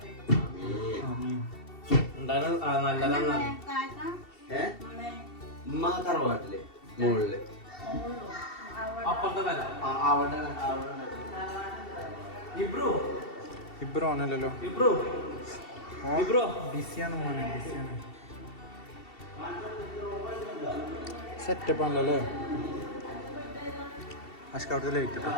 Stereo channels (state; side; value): late; right; 2.7 ms